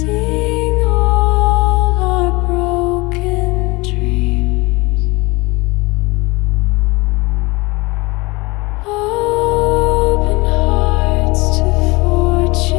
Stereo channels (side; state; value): right; quieter; 24.1 dB